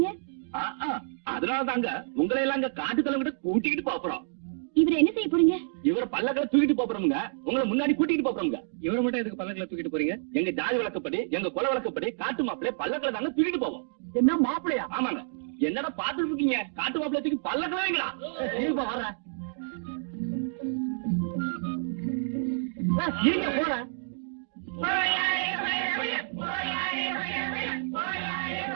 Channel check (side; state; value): left; silent; digital silence